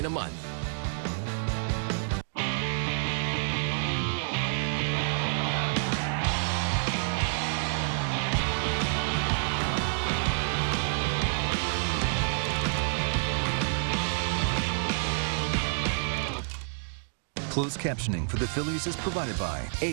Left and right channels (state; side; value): silent; left; digital silence